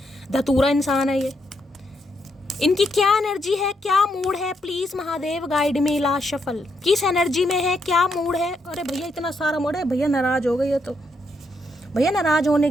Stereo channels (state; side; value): normal; both; correlation 0.78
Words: धतूरा इंसान है ये, इनकी क्या एनर्जी है, क्या मूड है? Please Mahadev guide me. Last shuffle किस एनर्जी में है, क्या मूड है? अरे भैया इतना सारा मूड है, भैया नाराज हो गई है। तो भैया नाराज होने